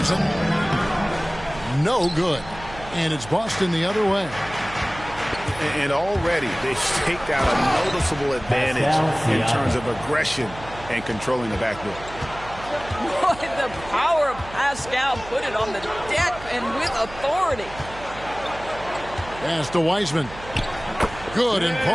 No good. And it's Boston the other way. And already they've staked out a noticeable advantage in terms of aggression and controlling the backboard. Boy, the power of Pascal put it on the deck and with authority. Pass to Wiseman. Good, and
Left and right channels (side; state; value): right; noise; hum, 15 dB below the sound